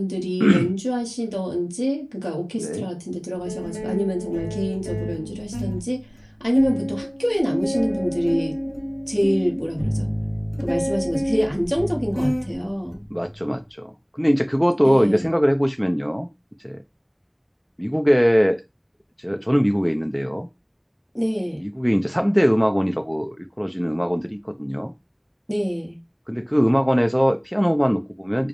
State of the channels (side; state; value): both; identical; correlation 1.00